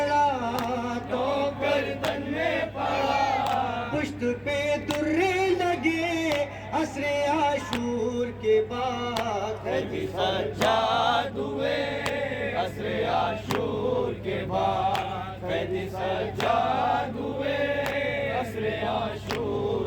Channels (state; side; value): identical; both; correlation 1.00